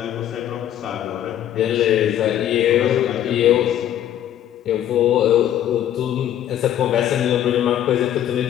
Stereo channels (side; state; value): right; quieter; 11.3 dB